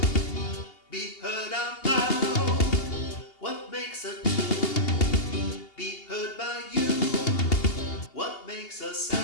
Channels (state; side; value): late; right; 2.8 ms